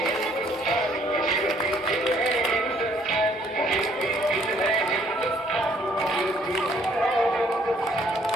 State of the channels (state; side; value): normal; both; correlation 0.63